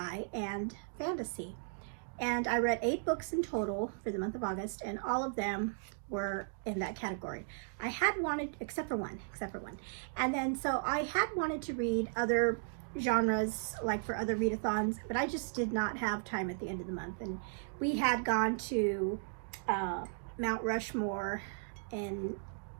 and fantasy. And I read 8 books in total for the month of August, and all of them were in that category. I had wanted, except for one. And then, so I had wanted to read other genres, like for other readathons, but I just did not have time at the end of the month. And we had gone to Mount Rushmore in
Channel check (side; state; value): left; silent; digital silence